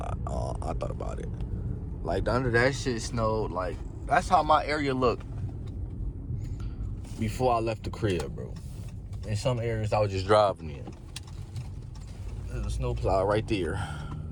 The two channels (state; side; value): identical; both; correlation 1.00